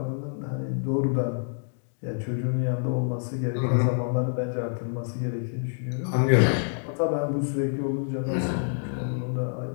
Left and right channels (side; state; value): right; silent; digital silence